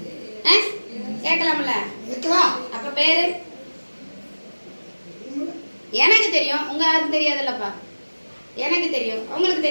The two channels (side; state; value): both; inverted; correlation -1.00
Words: கேட்கலாம்ல? அப்ப பேரு? எனக்கு தெரியும். உங்க யாருக்கும் தெரியாதுல்லப்பா. எனக்கு தெரியும். உங்களுக்கு